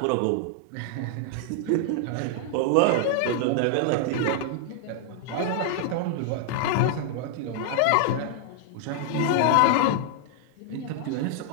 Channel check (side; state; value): both; different; correlation 0.00